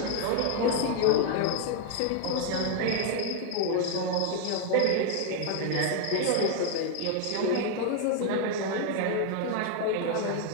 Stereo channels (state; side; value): different; both; correlation 0.01